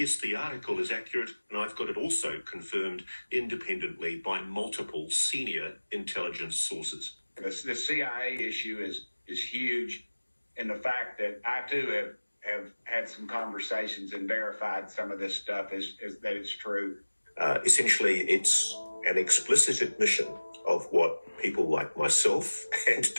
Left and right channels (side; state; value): both; inverted; correlation -1.00